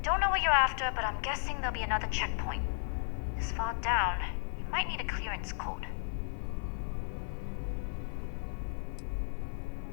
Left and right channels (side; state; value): right; silent; 55 dB below the other